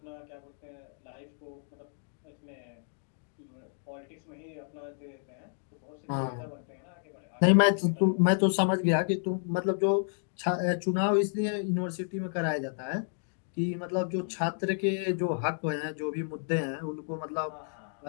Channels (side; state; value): right; silent; digital silence